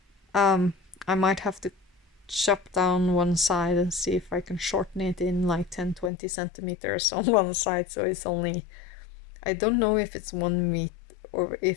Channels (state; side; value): drops out; right; at 6.1 s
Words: I might have to chop down one side and see if I can shorten it in like 10-20 centimeters on one side, so it's only, I don't know if it's 1 meter or